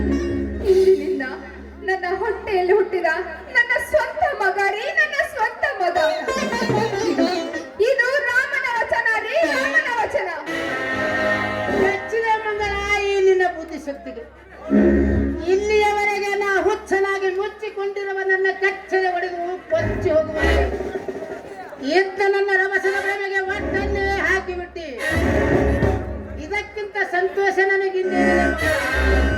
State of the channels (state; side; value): identical; both; correlation 1.00